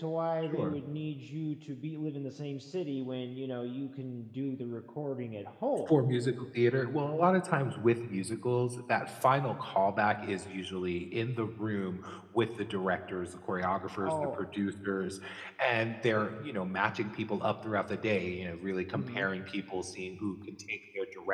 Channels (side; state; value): both; identical; correlation 1.00